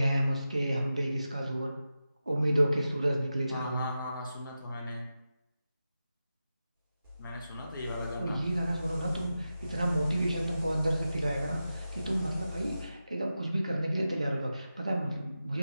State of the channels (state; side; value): inverted; both; correlation -0.91